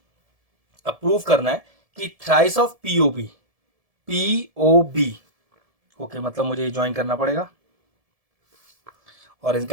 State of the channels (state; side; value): late; left; 1.7 ms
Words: अब प्रूफ करना है कि thrice of P O B, P O B, okay मतलब मुझे ज्वाइन करना पड़ेगा और